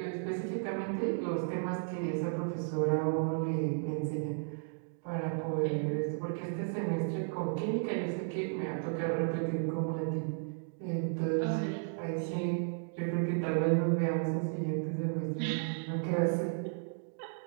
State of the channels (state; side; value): silent; left; digital silence